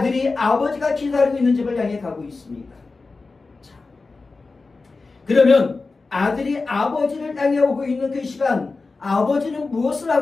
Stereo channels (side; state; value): right; quieter; 3.9 dB